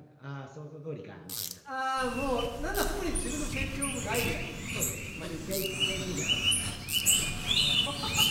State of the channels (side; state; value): both; identical; correlation 1.00